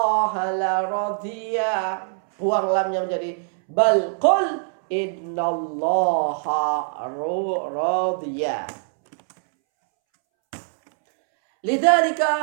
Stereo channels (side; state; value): left; silent; 64 dB below the other